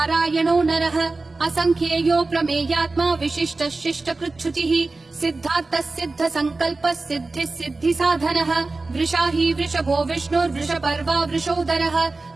नरः असंख्येयो प्रमेयात्मा विशिष्टः शिष्टकृच्छुचिः सिद्धार्थः सिद्ध संकल्पः सिद्धिः सिद्धि साधनः वृषाही वृषभो विष्णुर्वृषपर्वा वृषोदरः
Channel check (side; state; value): left; quieter; 3.5 dB